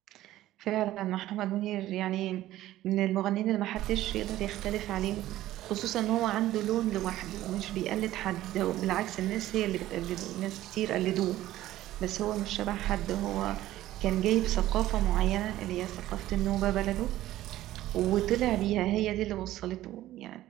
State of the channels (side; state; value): left; quieter; 14.7 dB